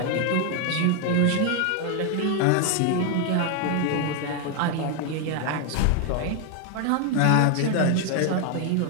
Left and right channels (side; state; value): both; different; correlation 0.01